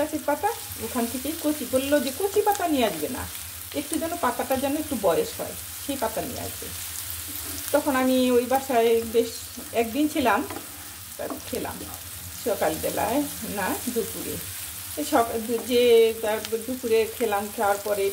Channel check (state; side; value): identical; both; correlation 1.00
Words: পাতা, ওখান থেকেই কচি, বললো যে কচি পাতা নিয়ে আসবে না, একটু যেন পাতাটা যেন একটু বয়স হয় সেই পাতা নিয়ে আসবে। তখন আমি ওই বাসায় বেশ একদিন ছিলাম, খেলাম সকালবেলায় না দুপুরে, যে দুপুরে খেলাম। খাওয়ার